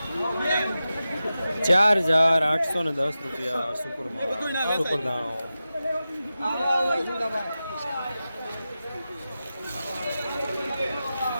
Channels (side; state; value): both; inverted; correlation -0.93